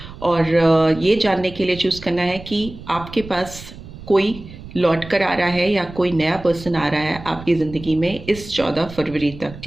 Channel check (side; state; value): right; noise; rumble, 15 dB below the sound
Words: और ये जानने के लिए चूज करना है कि आपके पास कोई लौट कर आ रहा है या कोई नया पर्सन आ रहा है आपकी ज़िंदगी में इस 14 फरवरी तक.